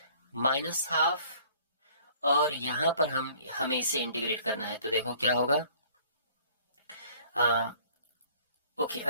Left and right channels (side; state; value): both; inverted; correlation -0.55